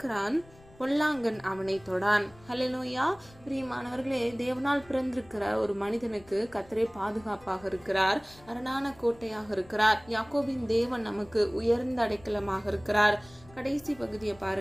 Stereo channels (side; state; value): left; noise; rumble, 24 dB below the sound